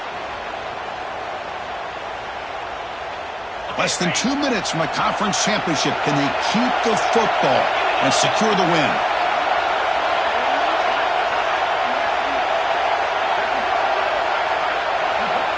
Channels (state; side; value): identical; both; correlation 1.00